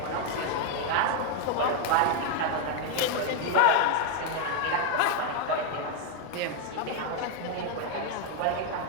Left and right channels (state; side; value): different; both; correlation 0.01